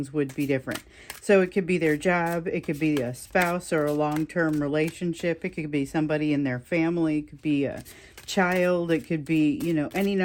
would be different. So it could be their job. It could be a spouse or a long-term relationship. It could be somebody in their family. It could be a child. It could be, any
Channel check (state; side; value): identical; both; correlation 1.00